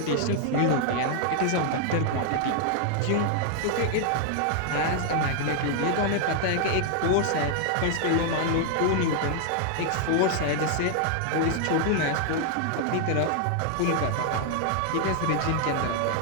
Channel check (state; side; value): different; both; correlation 0.00